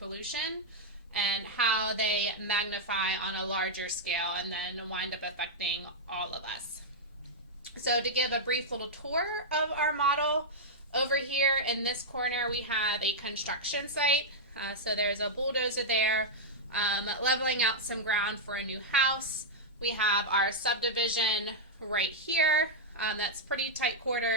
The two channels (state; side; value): normal; both; correlation -0.06